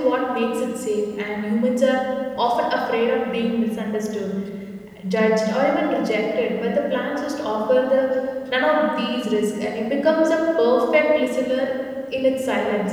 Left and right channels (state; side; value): identical; both; correlation 1.00